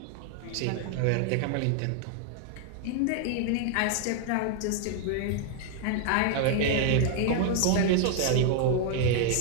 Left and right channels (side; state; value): both; different; correlation 0.00